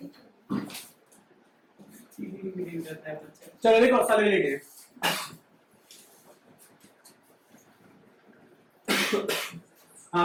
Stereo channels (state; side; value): identical; both; correlation 1.00